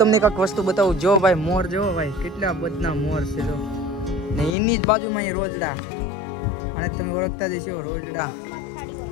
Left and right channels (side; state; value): right; drops out; at 4.5 s